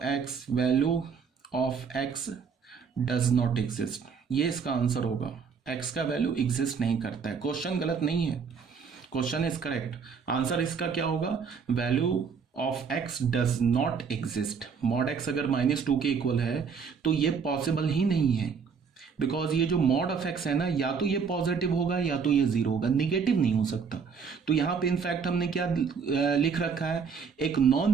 x, value of x does not exist, ये इसका आंसर होगा। एक्स का वैल्यू एग्जिस्ट नहीं करता है। क्वेश्चन गलत नहीं है, क्वेश्चन इज करेक्ट। आंसर इसका क्या होगा, value of x does not exist. Mod x अगर -2 के इक्वल है तो ये पॉसिबल ही नहीं है, बिकॉज ये जो मॉड ऑफ एक्स है ना, या तो ये पॉजिटिव होगा या तो ये 0 होगा, निगेटिव नहीं हो सकता। तो यहाँ पे इनफैक्ट हमने क्या लिख रखा है, एक नॉन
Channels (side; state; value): left; quieter; 6.0 dB